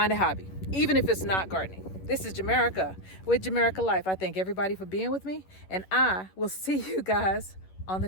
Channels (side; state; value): right; late; 11 ms